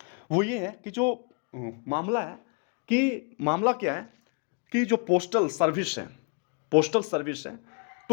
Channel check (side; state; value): right; quieter; 36.1 dB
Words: वो ये है कि जो मामला है, कि मामला क्या है कि जो पोस्टल सर्विस है,